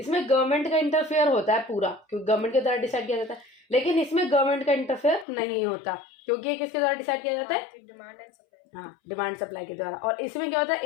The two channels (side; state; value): right; drops out; at 5.2 s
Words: गवर्नमेंट का इंटरफेयर होता है पूरा, क्योंकि गवर्नमेंट के द्वारा डिसाइड किया जाता है। लेकिन इसमें गवर्नमेंट का इंटरफेयर नहीं होता, क्योंकि ये किसके द्वारा डिसाइड किया जाता है, डिमांड एंड सप्लाई, हाँ, डिमांड सप्लाई के द्वारा। और इसमें क्या होता है,